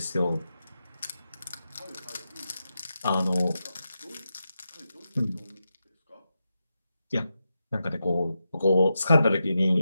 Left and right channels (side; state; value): both; inverted; correlation -0.88